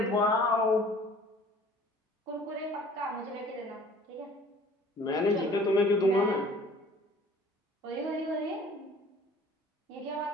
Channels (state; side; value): normal; both; correlation 0.50